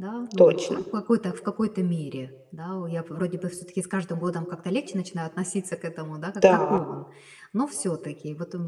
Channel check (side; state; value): both; identical; correlation 1.00